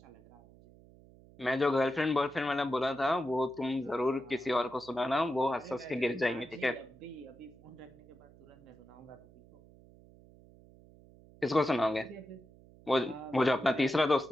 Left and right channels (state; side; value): noise; right; hum, 24 dB below the sound